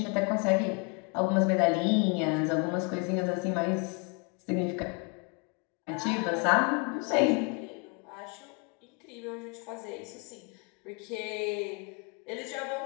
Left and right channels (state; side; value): quieter; right; 33.2 dB